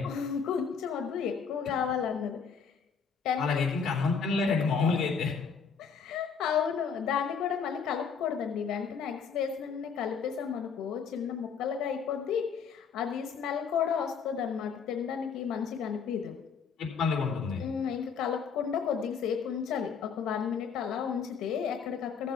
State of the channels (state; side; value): quieter; right; 6.2 dB